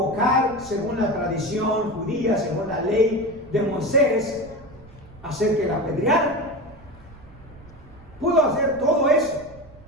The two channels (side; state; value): right; noise; rumble, 22 dB below the sound